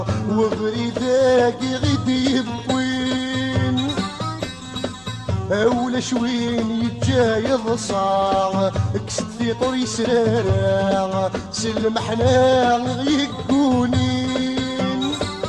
وبريدة غيد يبوين أول شوين يتجايض صاع كست في طري سرارة سلمحنا يقونين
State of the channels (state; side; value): noise; left; hum, 27 dB below the sound